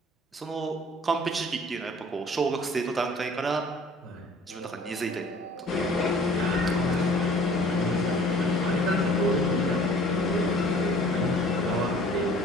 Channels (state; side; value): normal; both; correlation 0.51